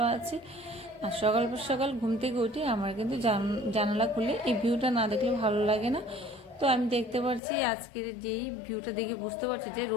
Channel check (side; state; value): right; drops out; at 7.4 s